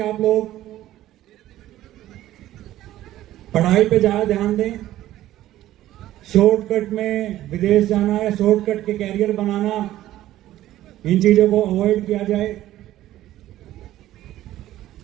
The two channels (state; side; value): quieter; left; 14.1 dB